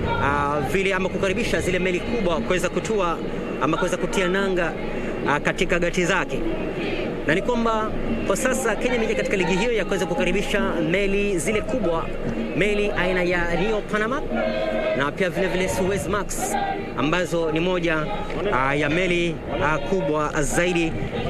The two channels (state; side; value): identical; both; correlation 1.00